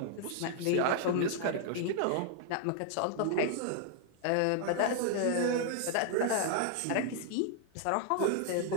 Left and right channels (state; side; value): different; both; correlation -0.01